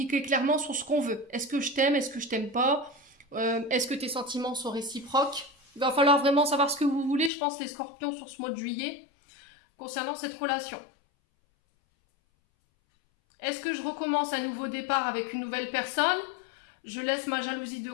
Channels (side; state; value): right; drops out; at 7.3 s